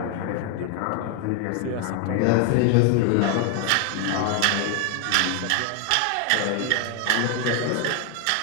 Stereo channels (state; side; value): different; both; correlation 0.01